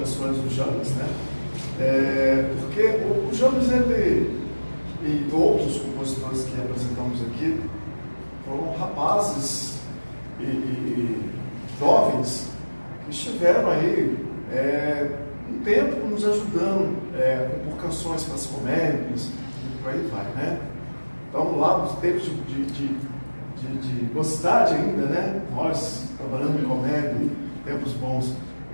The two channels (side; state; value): both; inverted; correlation -1.00